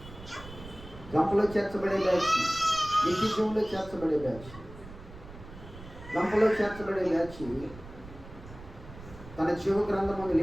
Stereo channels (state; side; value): noise; right; rumble, 16 dB below the sound